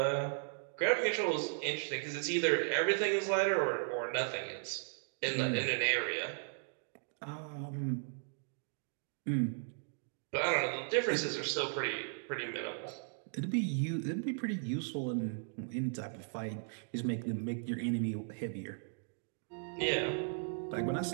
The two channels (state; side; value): silent; left; digital silence